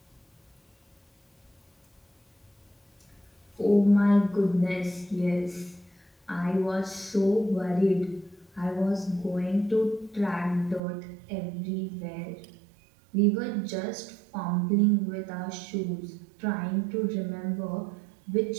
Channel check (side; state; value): left; drops out; at 10.8 s